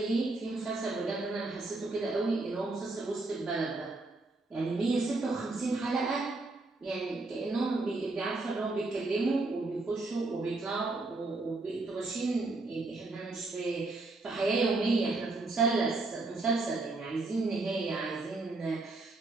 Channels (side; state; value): left; quieter; 3.3 dB